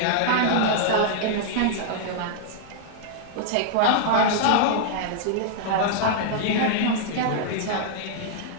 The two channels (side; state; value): both; different; correlation -0.01